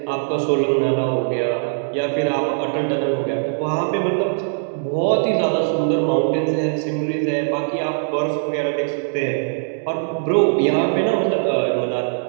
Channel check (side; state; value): left; silent; 65 dB below the other